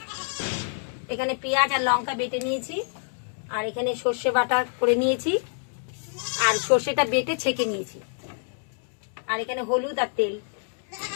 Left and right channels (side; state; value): right; silent; digital silence